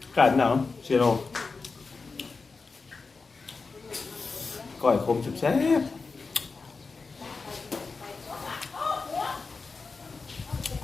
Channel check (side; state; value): right; quieter; 4.3 dB